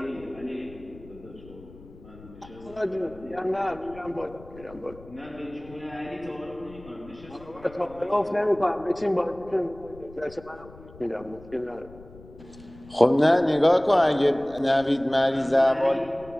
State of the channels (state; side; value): noise; left; rumble, 20 dB below the sound